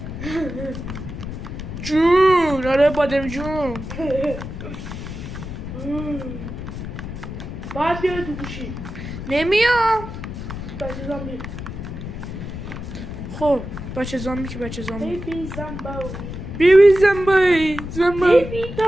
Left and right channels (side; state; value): left; noise; rumble, 8 dB below the sound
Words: جون آره بادم جون. باید بیاره تو گوشی. نمیام. بچه زامبی. خب بچه زامبی که بچه زامبی. بیبی زامبی.